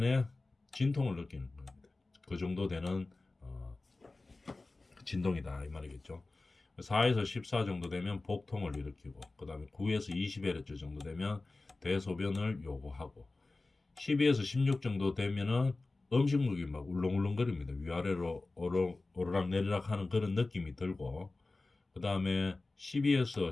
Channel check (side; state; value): right; quieter; 3.3 dB